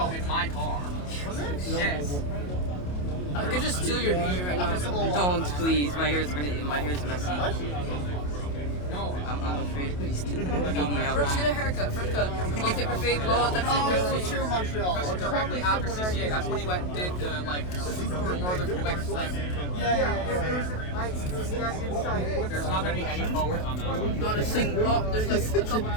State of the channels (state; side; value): late; right; 28 ms